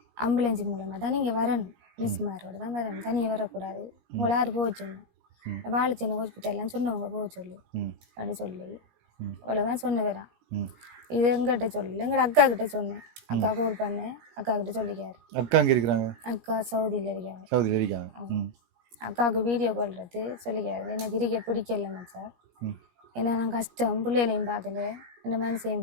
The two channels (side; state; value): left; late; 17 ms